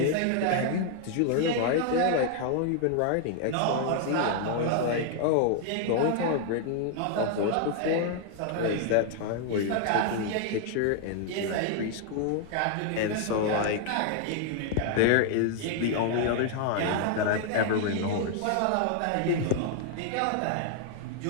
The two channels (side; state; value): both; different; correlation 0.00